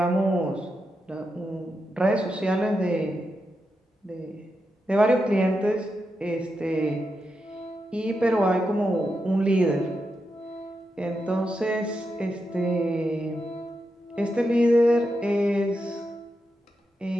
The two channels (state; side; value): normal; both; correlation 0.86